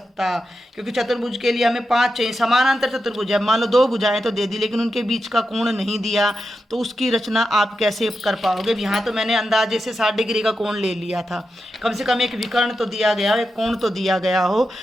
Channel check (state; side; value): normal; both; correlation 0.89